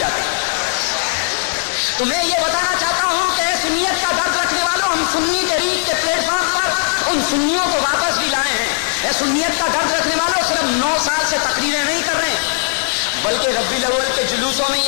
ہیں. تو میں یہ بتانا چاہتا ہوں کہ سنیت کا درد رکھنے والوں, ہم سنی تحریک کے پلیٹ فارم پر ان سنیوں کو واپس بھی لائے ہیں. اے سنیت کا درد رکھنے والوں, صرف 9 سال سے تقریریں نہیں کر رہے بلکہ ربیع الاول کے جلوسوں میں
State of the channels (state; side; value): silent; right; 57 dB below the other